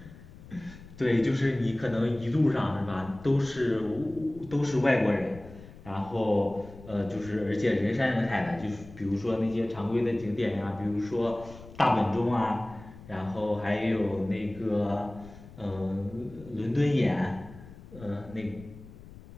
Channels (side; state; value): left; noise; rumble, 18 dB below the sound